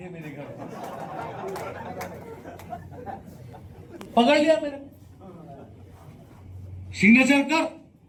मेरे घर। पकड़ लिया मेरे, सिग्नेचर कर,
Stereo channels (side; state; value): both; identical; correlation 1.00